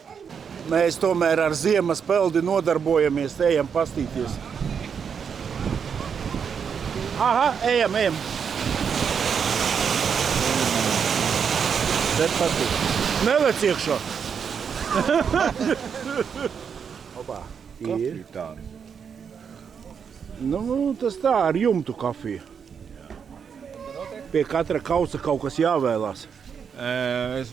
Mēs tomēr ar ziemas peldi nodarbojamies, ejam pastīties. Aha, ejam. Bet patīk. Nelec iekšā. Opā. Ir. Nu, tas tā ar jumtu kafiju. Pie katra kausa kaut kas jāvēlās. Es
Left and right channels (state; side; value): quieter; left; 6.9 dB